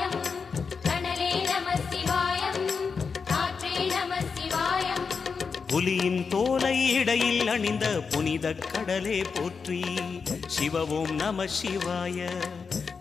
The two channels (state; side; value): quieter; right; 5.4 dB